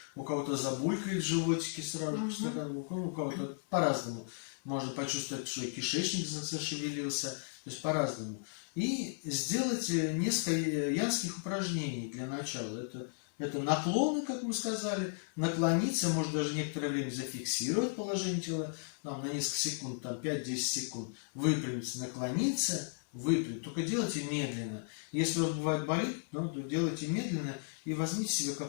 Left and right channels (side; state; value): right; silent; 54 dB below the other